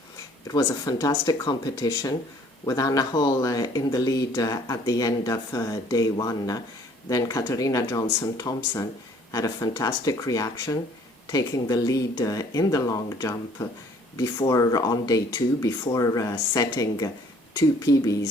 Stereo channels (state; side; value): normal; both; correlation 0.57